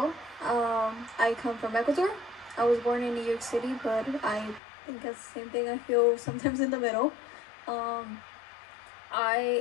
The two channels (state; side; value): drops out; right; at 4.6 s